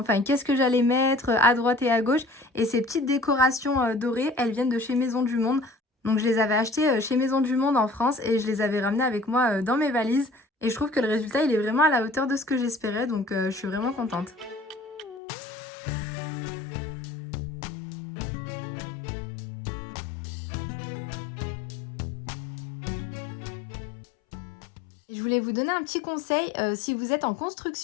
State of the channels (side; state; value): right; drops out; at 15.2 s